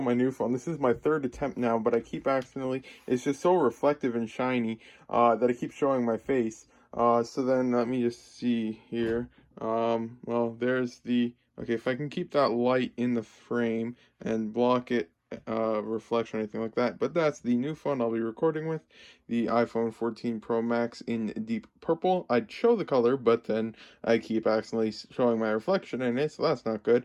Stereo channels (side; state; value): both; identical; correlation 1.00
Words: my new phone. This is my third attempt now, but I keep accidentally, it's just so reflective and shiny that I keep showing my face. So then let me just see here. Well, there's the, okay, if I can keep that light in the frame and block it, reflection or anything like that, but that's the new phone I'll be recording with, the iPhone 14 Pro Max in deep purple. I'd show the color, but then I keep accidentally showing my reflection in it, so that's not good.